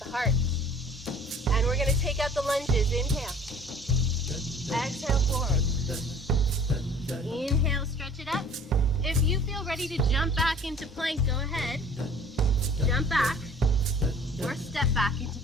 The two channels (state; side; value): normal; both; correlation 0.50